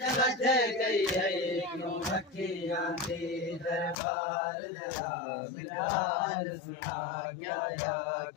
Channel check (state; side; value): drops out; right; at 4.0 s